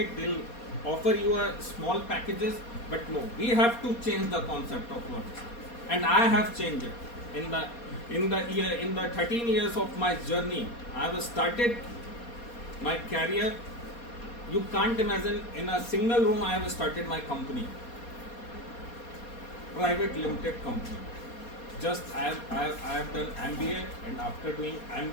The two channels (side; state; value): right; late; 4.2 ms